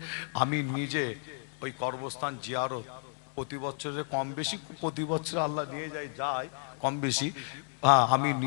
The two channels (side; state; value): right; silent; 57 dB below the other